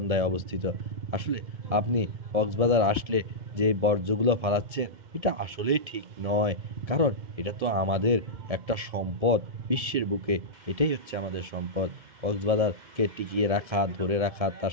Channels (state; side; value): late; left; 1.7 ms